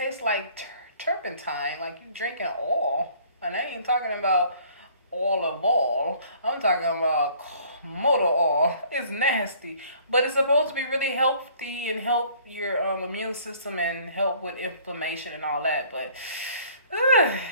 like turpentine, like you drinking oil. And I ain't talking about oil of oil. I'm talking about motor oil. It's nasty, but it's supposed to be really healthy and help your immune system and help with inflammation and all that. But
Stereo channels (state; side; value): inverted; both; correlation -0.56